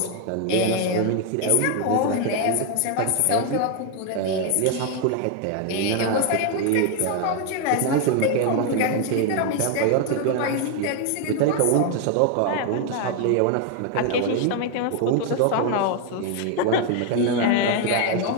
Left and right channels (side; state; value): both; different; correlation 0.01